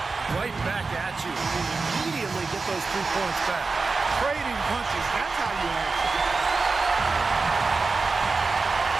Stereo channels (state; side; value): quieter; left; 4.1 dB